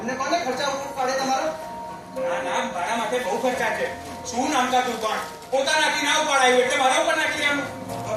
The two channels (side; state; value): both; identical; correlation 1.00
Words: કોને ખર્ચા ઉપર પાડે તમારો? ના ના, મારા માટે બહુ ખર્ચા છે. શું નામતા તું પણ પોતાનાથી ના ઉપાડાયું એટલે મારા ઉપર નાખી લેવાનું.